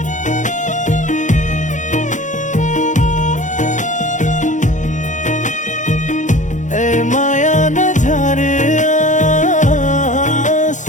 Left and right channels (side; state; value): right; late; 0.36 ms